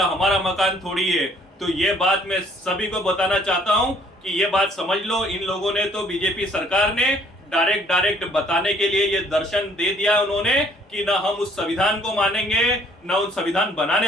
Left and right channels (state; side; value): normal; both; correlation 0.60